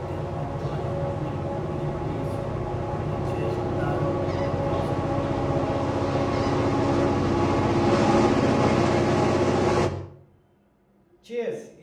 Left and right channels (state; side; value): identical; both; correlation 1.00